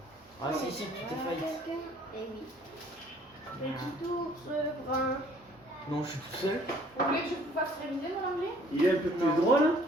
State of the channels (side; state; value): both; normal; correlation 0.58